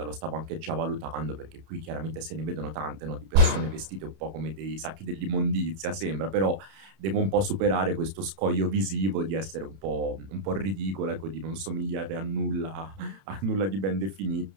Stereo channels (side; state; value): left; late; 31 ms